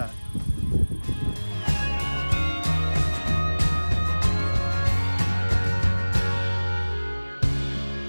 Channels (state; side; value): inverted; both; correlation -1.00